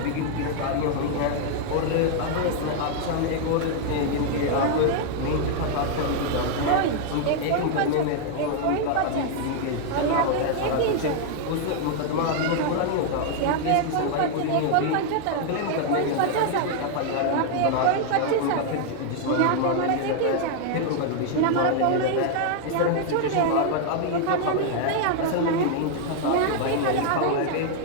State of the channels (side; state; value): both; different; correlation 0.00